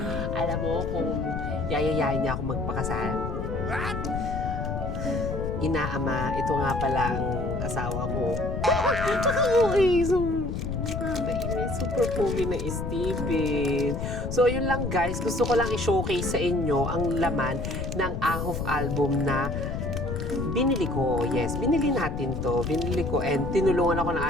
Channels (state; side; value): noise; left; rumble, 4 dB below the sound